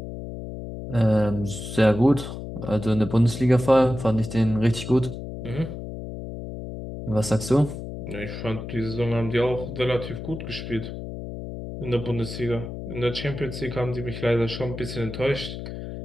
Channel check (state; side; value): noise; left; hum, 9 dB below the sound